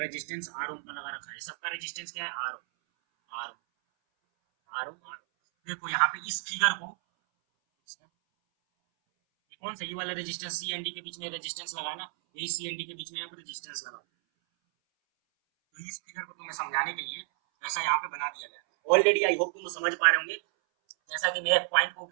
आर ओम का लगा रखा है। सबका रेजिस्टेंस क्या है? R ohm. R ohm R ohm R ohm. देखो यहाँ पे इस फिगर को, ये कौन सा, ये वाला रेजिस्टेंस सी एंड डी के बीच में रेजिस्टेंस लगा ना, यही सी एंड डी के बीच में यहाँ पे रेजिस्टेंस लगा। तो इस फिगर को तुम्हें समझाने के लिए ऐसा यहाँ पे बना दिया गया। ऑलरेडी आई होप तुम समझ पा रहे होंगे। जैसा कि मैं एक पॉइंट को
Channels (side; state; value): left; silent; 57 dB below the other